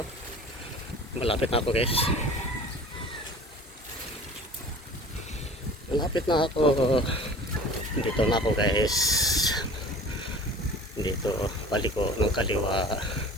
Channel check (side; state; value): both; normal; correlation 0.42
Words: Malapit na ako guys. Malapit na ako. Dito na ako guys. Dito balik ko ng kaliwa.